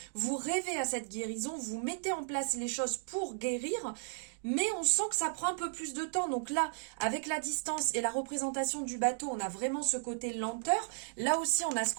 vous rêvez à cette guérison, vous mettez en place les choses pour guérir, mais on sent que ça prend un peu plus de temps. Donc là, avec la distance et la représentation du bateau, on a vraiment ce côté lenteur. Là aussi, on a ce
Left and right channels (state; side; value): silent; left; digital silence